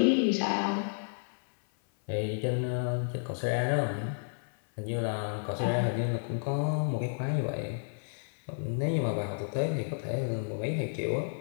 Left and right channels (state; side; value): silent; right; 57 dB below the other